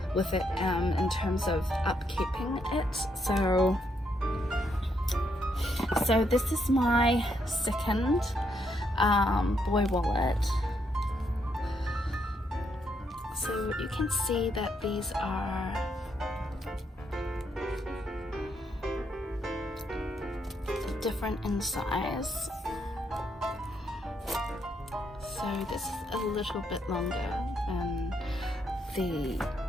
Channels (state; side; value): normal; both; correlation 0.76